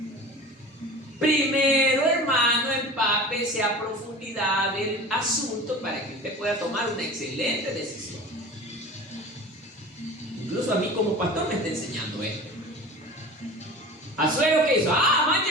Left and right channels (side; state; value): both; normal; correlation 0.37